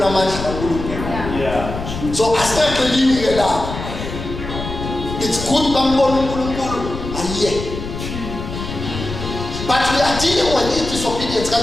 amandla kaNkulunkulu. Yeah. So asingaqelini ke lapho. It's good bambona uNkulunkulu ayiye. But we are dealing with disobedience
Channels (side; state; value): left; noise; rumble, 7 dB below the sound